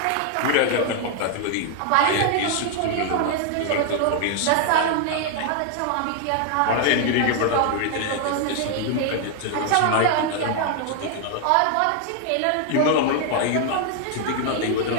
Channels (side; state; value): both; different; correlation 0.00